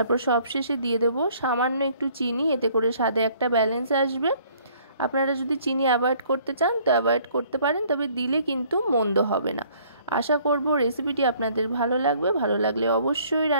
সবশেষে দিয়ে দেব সামান্য একটু চিনি, এতে করে স্বাদে একটা ব্যালেন্স আসবে। আপনারা যদি চিনি অ্যাভয়েড করতে চান তো অ্যাভয়েড করতে পারেন, তবে দিলে কিন্তু মন্দ হবে না। আশা করব রেসিপিটি আপনাদের ভালো লাগবে। ভালো লাগলে অবশ্যই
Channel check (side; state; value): both; inverted; correlation -0.59